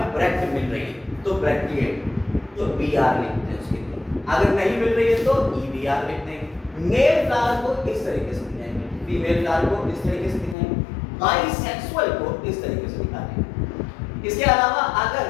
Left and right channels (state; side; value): drops out; right; at 10.6 s